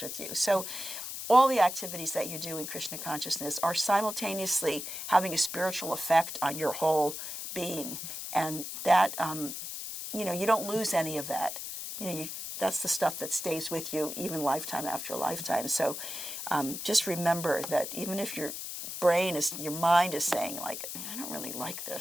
with you. So all the activities that you do in Krishna consciousness are simultaneously having a spiritual effect on your whole being. And that, you know, you don't lose any of that. You know, that's the stuff that stays with you even lifetime after lifetime. So just remember that even if your mind is saying, like, I don't really like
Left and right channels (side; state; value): left; noise; hiss, 7 dB below the sound